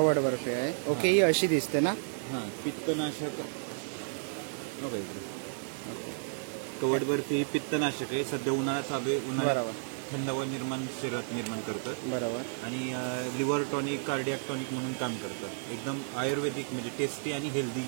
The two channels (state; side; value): silent; left; 56 dB below the other